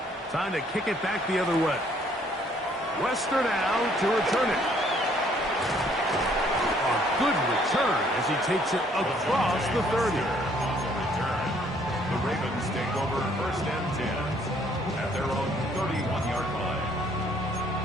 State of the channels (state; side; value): normal; both; correlation 0.64